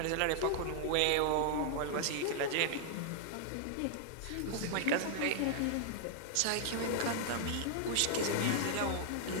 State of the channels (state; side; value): different; both; correlation 0.00